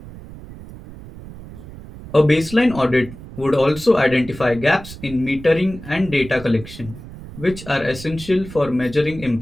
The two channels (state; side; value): noise; right; rumble, 15 dB below the sound